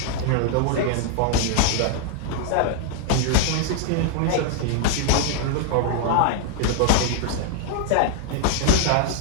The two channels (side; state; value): both; different; correlation 0.00